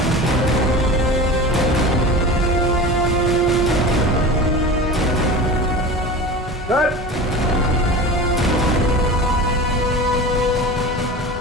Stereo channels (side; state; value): both; normal; correlation 0.32